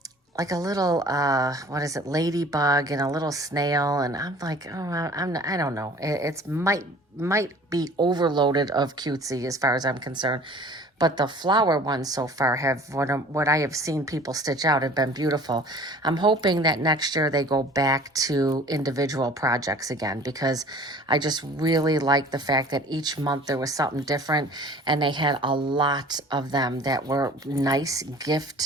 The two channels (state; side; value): normal; both; correlation 0.47